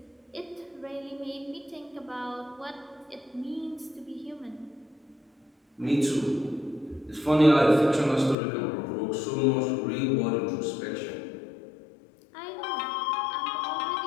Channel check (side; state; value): right; drops out; at 8.3 s